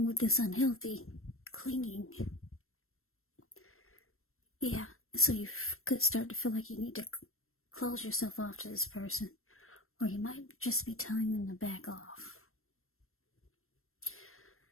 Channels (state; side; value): late; right; 0.62 ms